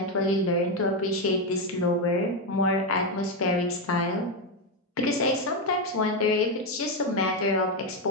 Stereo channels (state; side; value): normal; both; correlation 0.07